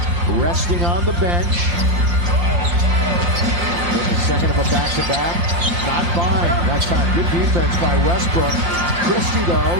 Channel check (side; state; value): left; late; 5.8 ms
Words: resting on the bench. In the second of a back-to-back. Not fine that time. Good defense by Westbrook. Christie,